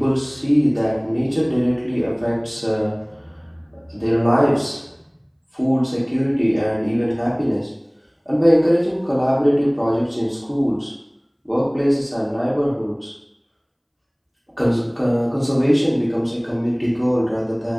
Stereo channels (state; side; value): identical; both; correlation 1.00